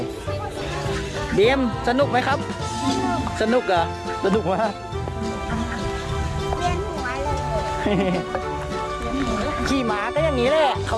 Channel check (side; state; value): both; identical; correlation 1.00